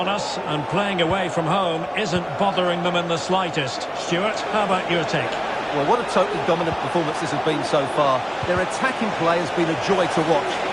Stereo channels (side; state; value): both; identical; correlation 1.00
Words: us, and playing away from home isn't bothering them in the slightest. Stuart, how about your take? Well, what a totally dominant performance this has been so far. Their attacking play has been a joy to watch.